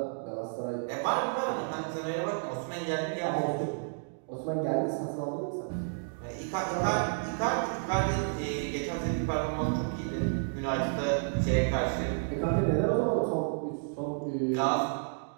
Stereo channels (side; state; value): left; silent; digital silence